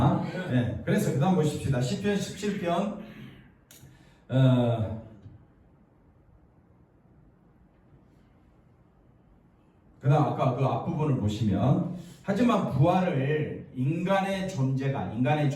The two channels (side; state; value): both; identical; correlation 1.00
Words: 네, 그래서 그 다음 보십시다. 시편 17편 그 다음 아까 그 앞부분을 보시면, 하지만 부활을 인간의 존재가